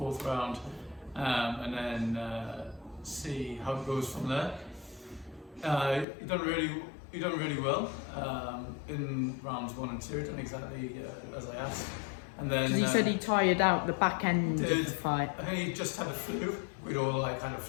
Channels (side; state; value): right; drops out; at 6.1 s